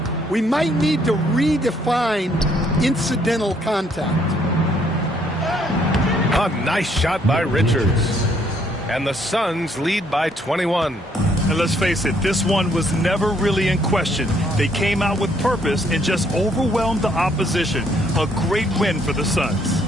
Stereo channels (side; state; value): both; normal; correlation 0.67